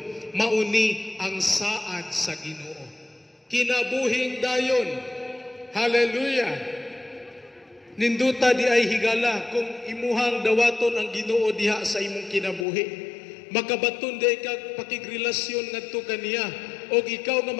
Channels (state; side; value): drops out; right; at 12.7 s